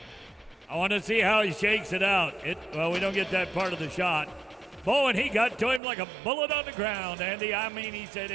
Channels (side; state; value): left; drops out; at 5.8 s